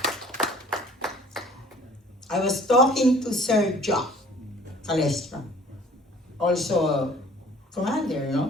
I was talking to Sir Jacques Calestra, also a commander,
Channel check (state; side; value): normal; both; correlation 0.52